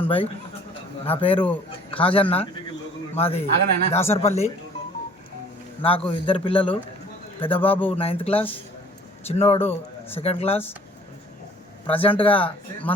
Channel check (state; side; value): normal; both; correlation 0.52